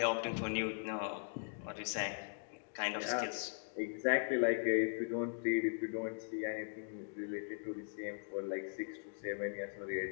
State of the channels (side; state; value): right; silent; digital silence